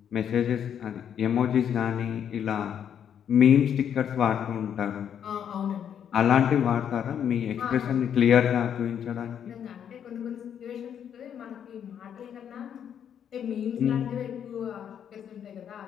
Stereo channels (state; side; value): quieter; right; 8.8 dB